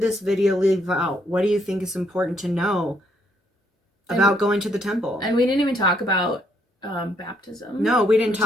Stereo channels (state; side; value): normal; both; correlation 0.71